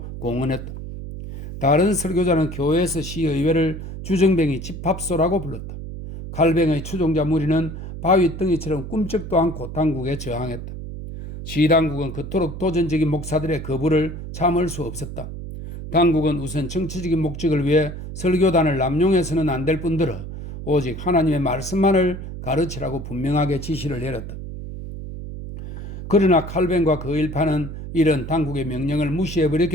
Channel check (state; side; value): noise; right; hum, 9 dB below the sound